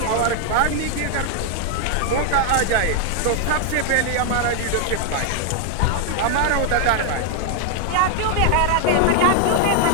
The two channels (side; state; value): both; different; correlation 0.00